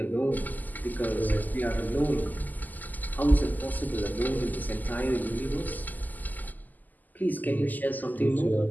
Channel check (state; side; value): late; right; 0.083 ms